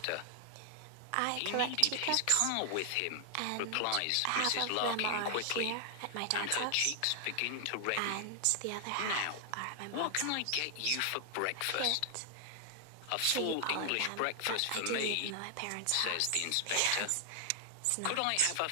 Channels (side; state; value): both; different; correlation 0.00